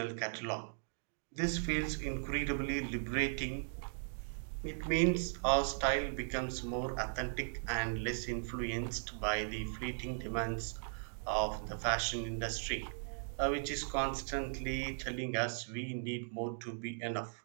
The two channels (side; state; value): left; silent; digital silence